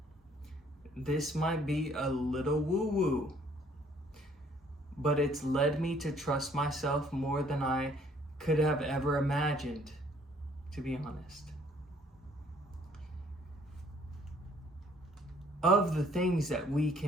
This might be a little woo-woo, but it's led me to trust myself more than I could have ever imagined, to be honest. Of the things that we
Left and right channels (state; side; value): normal; both; correlation 0.61